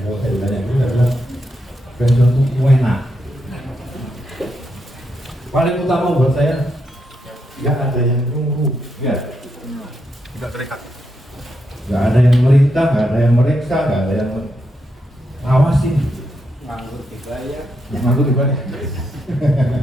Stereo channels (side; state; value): both; normal; correlation 0.82